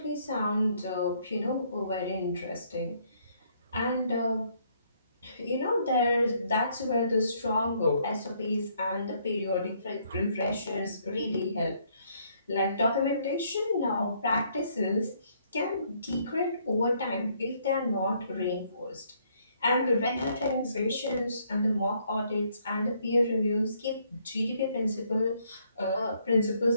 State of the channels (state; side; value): inverted; both; correlation -0.69